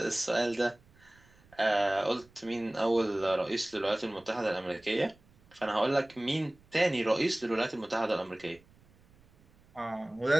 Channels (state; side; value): noise; right; rumble, 29 dB below the sound